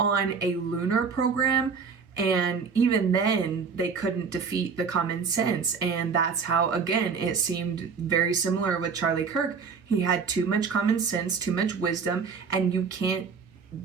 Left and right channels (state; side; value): quieter; left; 5.6 dB